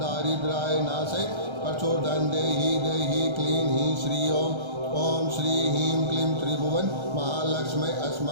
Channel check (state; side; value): late; left; 1.3 ms